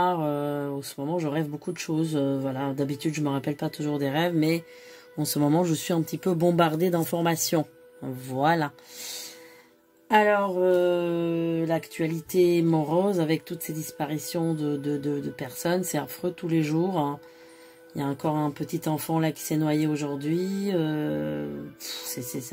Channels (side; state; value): both; identical; correlation 1.00